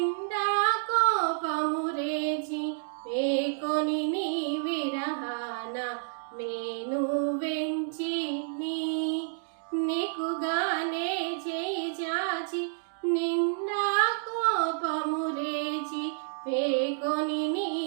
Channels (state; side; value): silent; left; digital silence